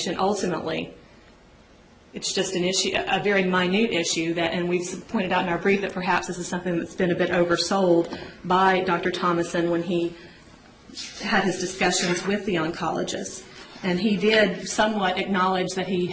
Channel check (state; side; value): identical; both; correlation 1.00